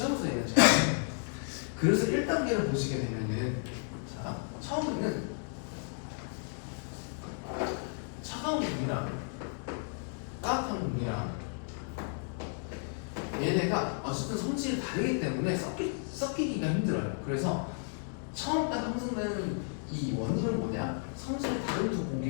얘는 잘. 그래서 1단계를 보시게 되면은, 자, 처음에는 차가운 공기랑 따뜻한 공기랑 얘네가 어쨌든 성질이 다르기 때문에 섞이기가 힘들어요. 그래서 처음까지 형성되는 이 원인은 뭐냐? 성질이 다른 두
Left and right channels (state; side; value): silent; right; 56 dB below the other